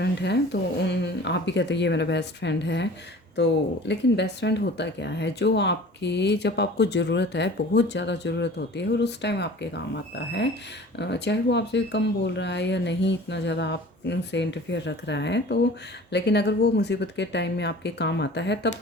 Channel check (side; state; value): both; normal; correlation 0.43